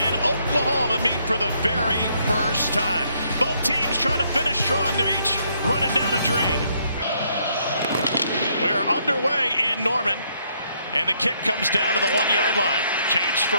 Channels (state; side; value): inverted; both; correlation -0.71